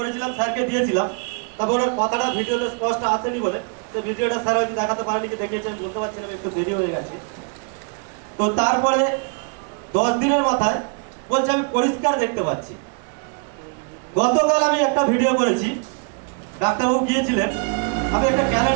স্যারকে দিয়েছিলাম, তবে ওনার কথাটা ভিডিওতে স্পষ্ট আসেনি বলে তো ভিডিওটা স্যার হয়তো দেখাতে পারেনি, কি দেখিয়েছে আমি বলতে পারছিলাম, একটু দেরি হয়ে গেছে। তো তারপরে 10 দিনের মাথায় বলছে আমি পরিষ্কার দেখতে পাচ্ছি। গতকাল আমি একটা ভিডিও করেছি, ডাক্তারবাবু গিয়েছিলেন, আমি একটা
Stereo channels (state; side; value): quieter; left; 38.2 dB